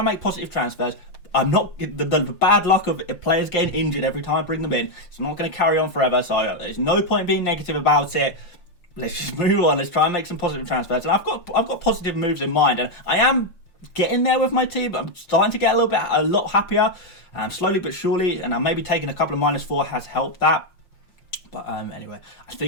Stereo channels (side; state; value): right; late; 5.7 ms